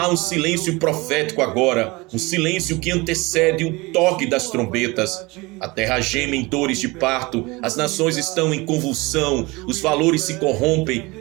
um silêncio profético agora, um silêncio que antecede o toque das trombetas. A terra geme em dores de parto, as nações estão em convulsão, os valores se corrompem,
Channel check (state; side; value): quieter; left; 23.7 dB